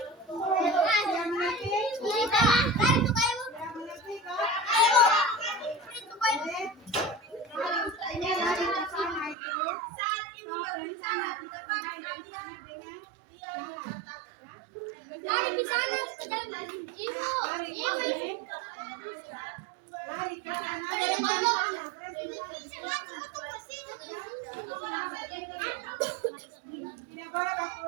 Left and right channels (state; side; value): drops out; left; at 9.3 s